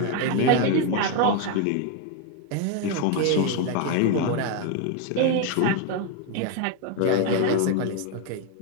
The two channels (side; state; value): both; different; correlation 0.01